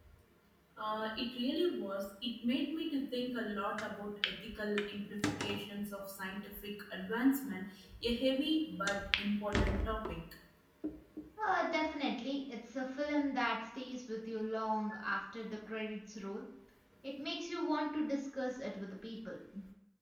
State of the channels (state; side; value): identical; both; correlation 1.00